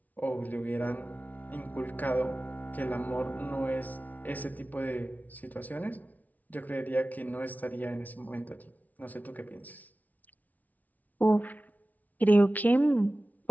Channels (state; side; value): late; right; 0.075 ms